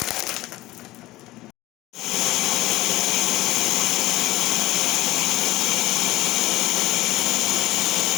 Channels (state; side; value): quieter; right; 17.5 dB